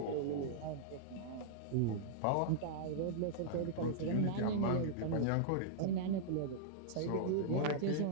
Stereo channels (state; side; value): different; both; correlation -0.02